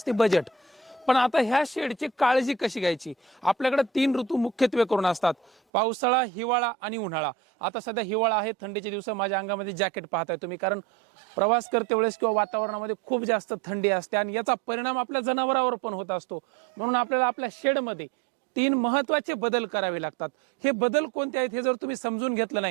बजेट। पण आता ह्या शेडची काळजी कशी घ्यायची? आपल्याकडे 3 ऋतू मुख्यत्वे करून असतात, पावसाळा, हिवाळा आणि उन्हाळा। आता सध्या हिवाळा आहे, थंडीचे दिवस, माझ्या अंगामध्ये जॅकेट पाहताय तुम्ही, कारण प्रवास करते वेळेस किंवा वातावरणामध्ये खूप जास्त थंडी असते आणि याचा परिणाम आपल्या जनावरांवर पण होत असतो। म्हणून आपल्याला आपल्या शेडमध्ये 3 महत्त्वाचे बदल करावे लागतात। हे बदल कोणते आहेत हे जर तुम्ही समजून घेतलं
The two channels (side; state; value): left; drops out; at 5.6 s